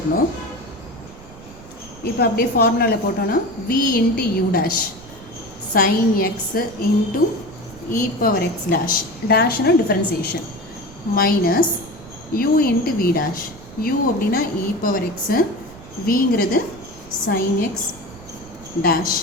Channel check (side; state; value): right; noise; rumble, 19 dB below the sound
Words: இப்போ அப்படியே ஃபார்முலாவில் போட்டோன்னா v into u dash sin x into e⁻x dash டேஷ்னா differentiation minus u into v dash. u அப்படின்னா e⁻x, vங்கிறது sin x dash